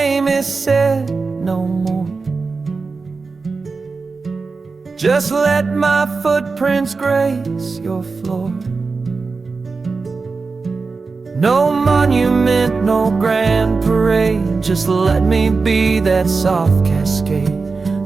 is said no more, just let my footprints grace your floor. No monument, no grand parade, just let me be that soft cascade,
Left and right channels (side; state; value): left; quieter; 4.3 dB